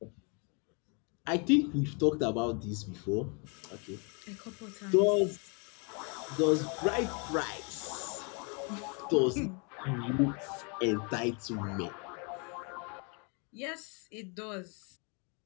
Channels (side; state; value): right; quieter; 34.9 dB